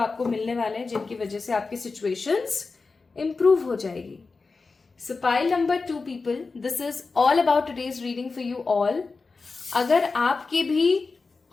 मिलने वाले हैं जिनकी वजह से आपकी सिचुएशंस इंप्रूव हो जाएगी. सो pile number 2 people, this is all about today's reading for you all. अगर आपके भी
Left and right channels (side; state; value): right; quieter; 4.2 dB